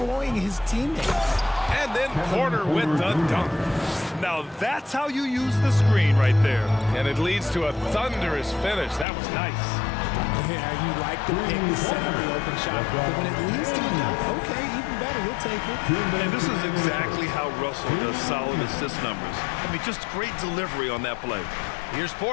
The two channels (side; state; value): right; drops out; at 9.1 s